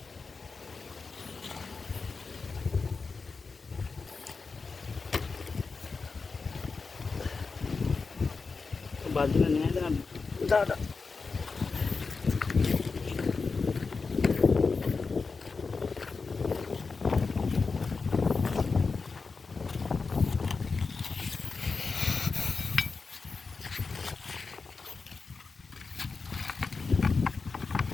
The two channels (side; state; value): right; quieter; 4.5 dB